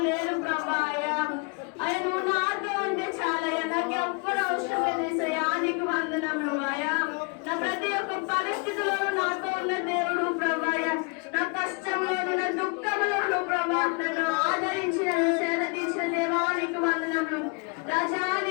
లేరు ప్రభా. అయ్యా నువ్వు నాతో ఉంటే చాలయ్యా, నాకు ఎవ్వరు అవసరం లేదు. యేసయ్యా, నీకు వందనములు. అయ్యా నా ప్రతి ఒక్క పరిస్థితిలో నాతో ఉన్న దేవుడు ప్రభా. నా కష్టంలోను, నా దుఃఖంలోను ప్రభా నన్ను ఆదరించి నన్ను సేద తీర్చిన దేవా, నీకు వందనములు. రాజా,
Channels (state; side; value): quieter; right; 32.3 dB